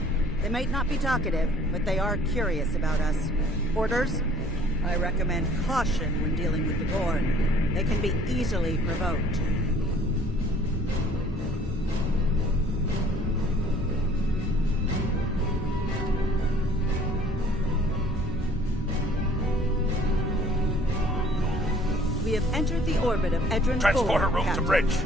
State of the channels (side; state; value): both; normal; correlation 0.56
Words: They might not be talkative, but they are curious about us. Orders? I recommend caution when dealing with the Gorn. They can be easily provoked. We have entered the orbit of Edron 4, Transporter room Captain. to bridge.